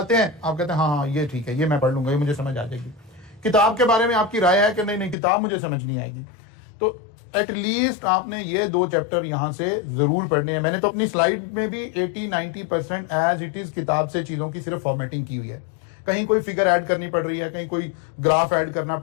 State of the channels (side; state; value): right; drops out; at 5.2 s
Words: हैं। आप कहते हैं हाँ ये ठीक है, ये मैं पढ़ लूंगा, ये मुझे समझ आ जाएगी। किताब के बारे में आपकी राय है कि नहीं किताब मुझे समझ नहीं आएगी। तो एटलीस्ट आपने ये 2 चैप्टर यहां से जरूर पढ़ने हैं। मैंने तो अपनी स्लाइड में भी 80-90% एज इट इज किताब से चीजों की सिर्फ फॉर्मेटिंग की हुई है। कहीं कोई फिगर ऐड करनी पड़ रही है, कहीं कोई ग्राफ ऐड करना